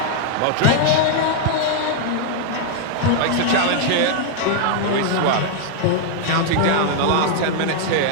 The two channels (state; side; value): different; both; correlation 0.00